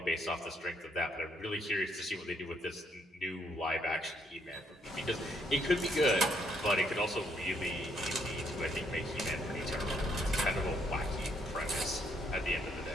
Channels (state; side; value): normal; both; correlation 0.71